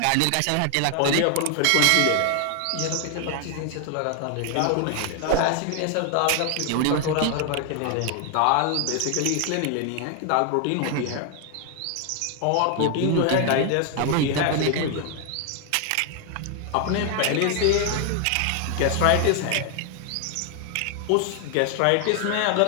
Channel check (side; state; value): both; different; correlation 0.00